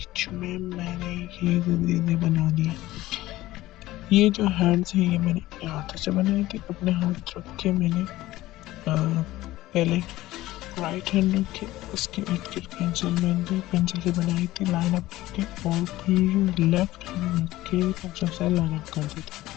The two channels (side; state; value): right; quieter; 16.7 dB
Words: में मैंने ये चीज़ें बना दी। ये जो हैंड्स हैं ये मैंने अपने हाथों से बनाए थे। अपने हाथ रख के मैंने पहले राइट हैंड रखे, उसके इर्द गिर्द पेंसिल से बनाई थी लाइन अप करके, और फिर लेफ्ट हैंड रख के पेंसिल से लाइन अप कर दी थी।